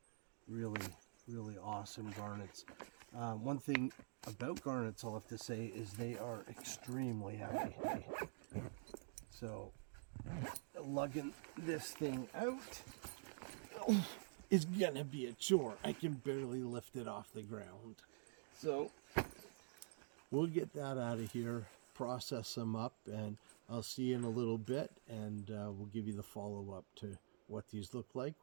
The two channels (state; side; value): silent; left; digital silence